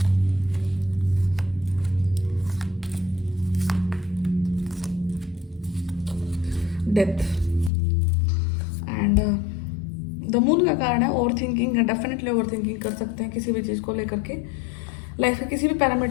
death and the moon का कारण है ओवर थिंकिंग है, डेफिनेटली ओवर थिंकिंग कर सकते हैं किसी भी चीज़ को लेकर के, लाइफ के किसी भी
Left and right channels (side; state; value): right; drops out; at 7.7 s